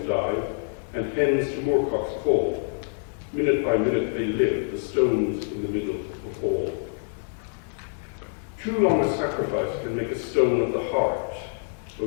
dive, and hens to moorcocks call. Minute by minute they live, the stones in the middle of all. Too long a sacrifice can make a stone of the heart, but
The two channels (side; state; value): right; silent; digital silence